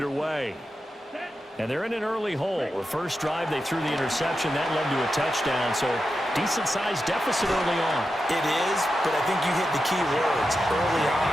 And they're in an early hole. The first drive, they threw the interception. That led to a touchdown, so decent-sized deficit early on. It is, but I think you hit the key words early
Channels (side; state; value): both; normal; correlation 0.89